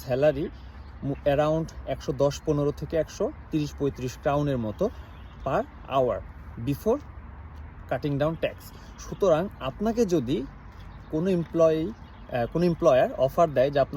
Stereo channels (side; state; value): both; identical; correlation 1.00